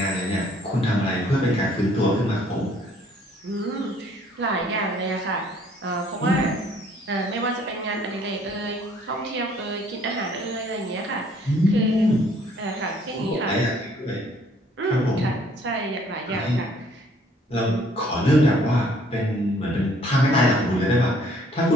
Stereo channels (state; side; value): normal; both; correlation 0.61